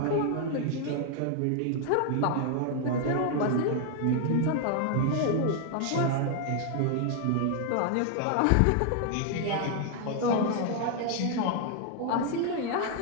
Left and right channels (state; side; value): different; both; correlation 0.00